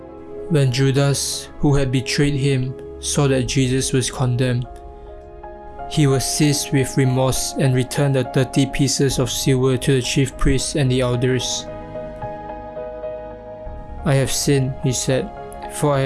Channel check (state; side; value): identical; both; correlation 1.00